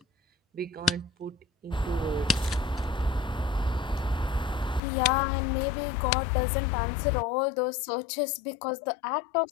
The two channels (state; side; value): drops out; right; at 4.8 s